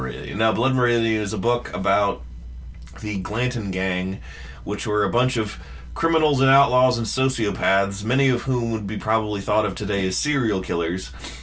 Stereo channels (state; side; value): identical; both; correlation 1.00